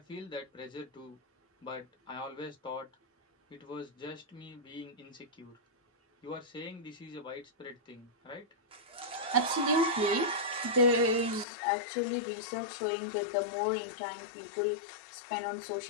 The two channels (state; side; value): drops out; right; at 11.5 s